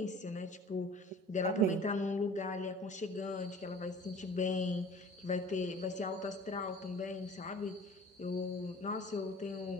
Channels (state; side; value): normal; both; correlation 0.45